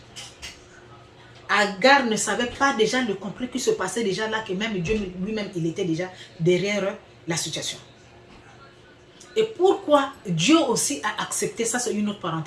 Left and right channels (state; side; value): identical; both; correlation 1.00